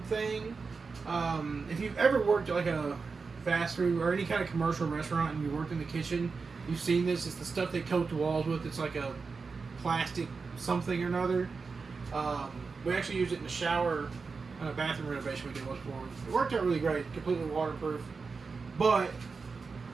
thing. If you've ever worked at like a fast food or any kind of commercial restaurant and you worked in the kitchen, you've seen this. It's the stuff they coat the walls with. It's like a plastic something or another. We actually used it in the shower on a bathroom renovation we did once before. It worked out really great, completely waterproof. But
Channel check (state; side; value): quieter; left; 4.7 dB